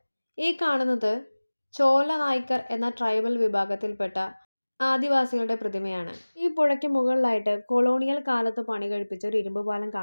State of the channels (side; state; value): both; inverted; correlation -1.00